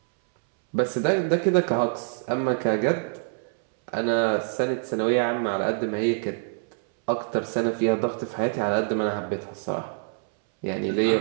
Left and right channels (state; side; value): silent; left; 61 dB below the other